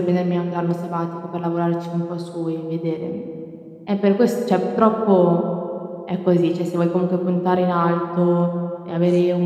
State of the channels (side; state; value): both; identical; correlation 1.00